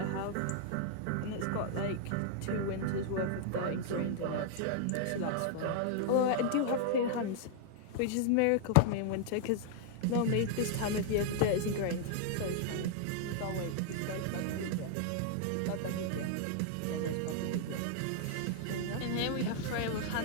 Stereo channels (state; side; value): different; both; correlation 0.00